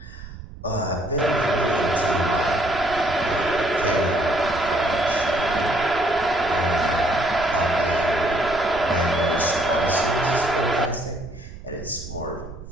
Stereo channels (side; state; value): right; noise; rumble, 14 dB below the sound